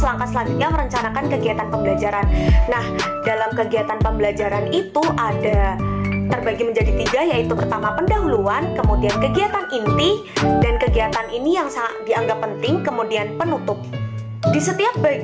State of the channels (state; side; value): identical; both; correlation 1.00